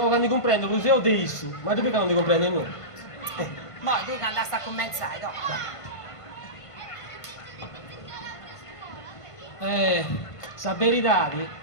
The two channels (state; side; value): late; right; 1.5 ms